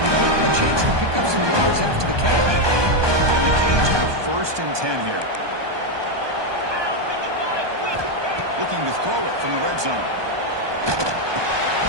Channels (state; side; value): late; left; 1.2 ms